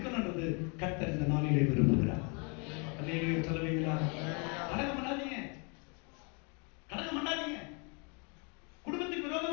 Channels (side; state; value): right; quieter; 34.4 dB